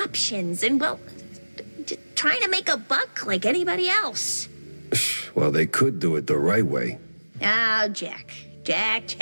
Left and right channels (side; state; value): both; inverted; correlation -1.00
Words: and well, just trying to make a buck like anybody else. well, they could do it the right way. Oh, Jack.